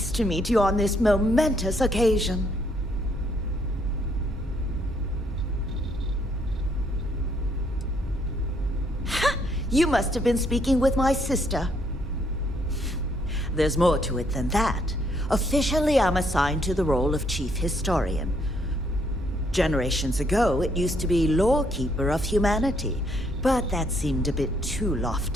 to meet you on this momentous occasion. Ha! You must have been speaking with my sister. There's more to it than that. Officially, I'm assigned to the role of chief historian. Generations ago, it used to be lawkeeper of humanity, but that seemed a bit too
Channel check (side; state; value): both; normal; correlation 0.70